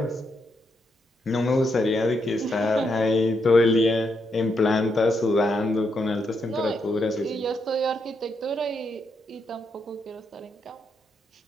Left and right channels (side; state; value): both; normal; correlation 0.80